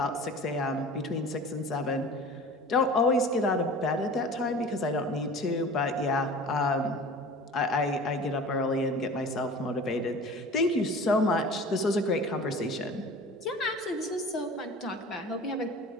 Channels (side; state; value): both; normal; correlation 0.40